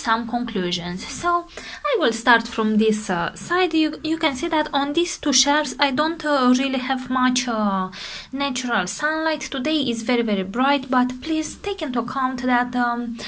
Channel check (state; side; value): identical; both; correlation 1.00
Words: conclusions. So I will start from this side. You can see that on these two shelves I don't really have much natural sunlight. Today is very bright, but please take into account that